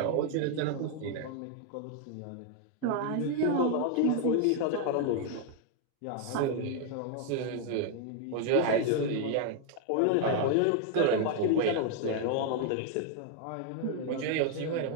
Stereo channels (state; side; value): different; both; correlation 0.00